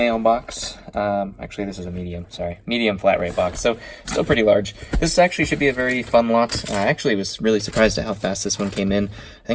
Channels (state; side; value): identical; both; correlation 1.00